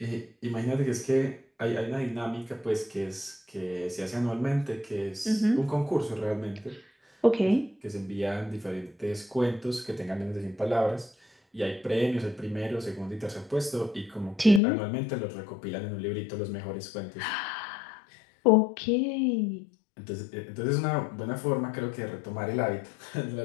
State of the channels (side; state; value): right; drops out; at 14.6 s